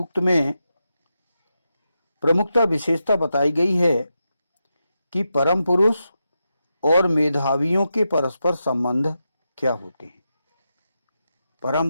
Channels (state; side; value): inverted; both; correlation -0.87